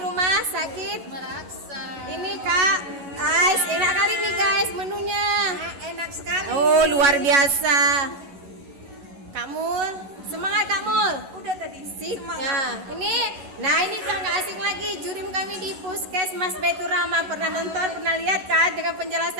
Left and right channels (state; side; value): late; left; 11 ms